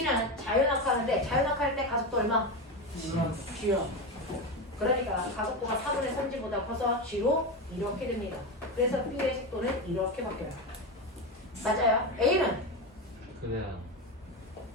자유 낙하하는데 자유 낙하할 때 가속도 얼마? G요. 그러니까 가속도가 4분의 3G보다 커서 G로 이렇게 됩니다. 그래서 B의 속도는 이렇게 바뀌어요. 맞아요. A는? 그래요.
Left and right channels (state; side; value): normal; both; correlation 0.17